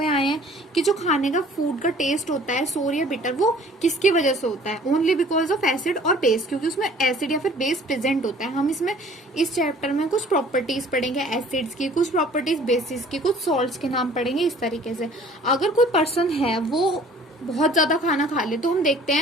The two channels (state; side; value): normal; both; correlation 0.52